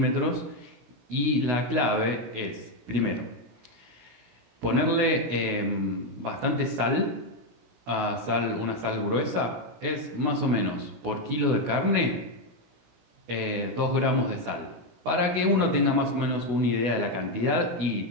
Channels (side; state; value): left; late; 16 ms